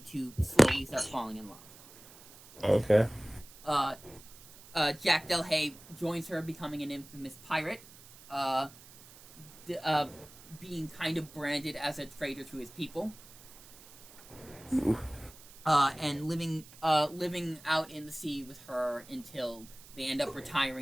to slowly start falling in love. Jack Delahaye joins her, becoming an infamous pirate, being kind of branded as a traitor to his people. And living out in the sea with her until they end up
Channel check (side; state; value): right; noise; hiss, 20 dB below the sound